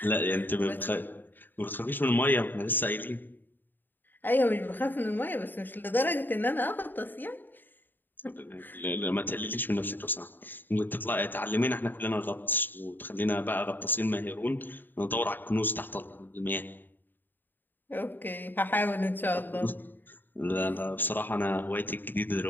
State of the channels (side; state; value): right; late; 0.092 ms